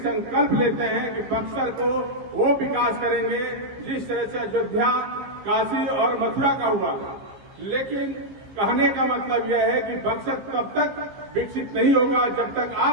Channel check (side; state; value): left; late; 15 ms